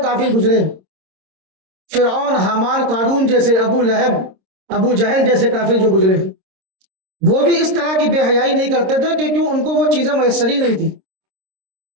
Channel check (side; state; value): left; late; 26 ms